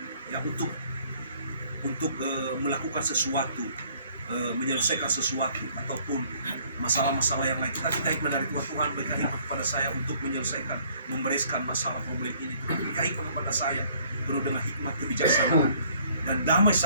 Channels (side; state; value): both; inverted; correlation -0.60